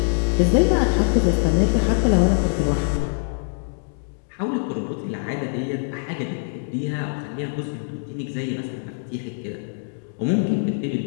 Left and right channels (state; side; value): silent; right; digital silence